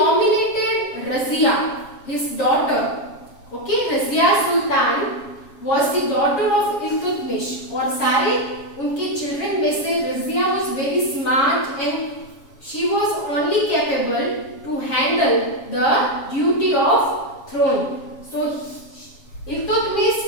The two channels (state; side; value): late; right; 7.3 ms